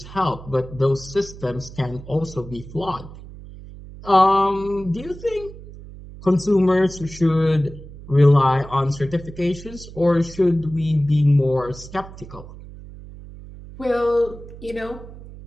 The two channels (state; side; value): noise; right; hum, 16 dB below the sound